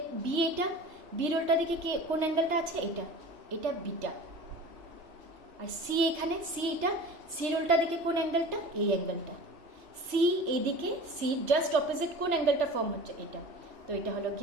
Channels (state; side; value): late; left; 3.3 ms